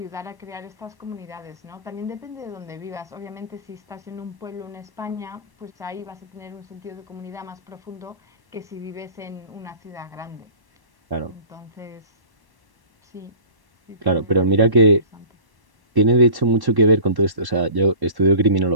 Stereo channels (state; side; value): late; left; 1.1 ms